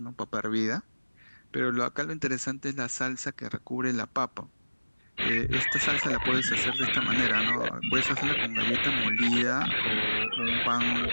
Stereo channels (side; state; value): both; inverted; correlation -1.00